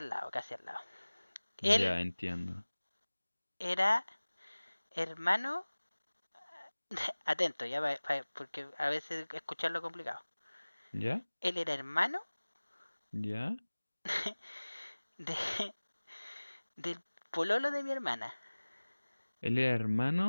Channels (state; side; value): inverted; both; correlation -1.00